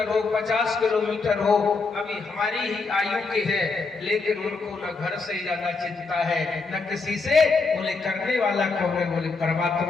हो, 50 किलोमीटर हो, अभी हमारी ही आयु के हैं, लेकिन उनको न घर से ज्यादा चिंता है, न किसी से। बोले करने वाला कौन है? बोले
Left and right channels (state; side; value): quieter; right; 4.2 dB